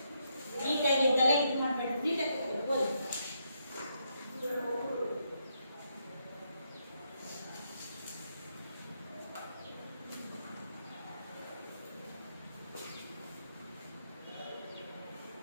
ನೀಟಾಗಿ ತಲೆ ಇದು ಮಾಡ್ಬೇಡಿ, ನೀಟಾಗಿ ಓದಿ.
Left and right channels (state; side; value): inverted; both; correlation -0.79